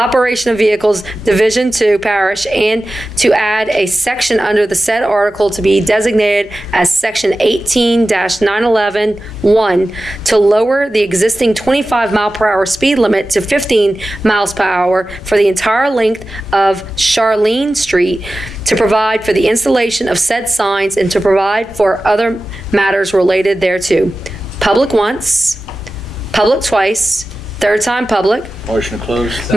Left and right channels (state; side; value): normal; both; correlation 0.95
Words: of Vehicles, Division 2, Parish, and to add a section under the said article to be designated as Section 18-911-1 to lower the existing 25-mile-per-hour speed limit to 15 miles per hour for the entire length of Charlene Street, to provide for the installation of said signs and to provide for other matters related thereto. Public once, public twice, third time public. Motion to close.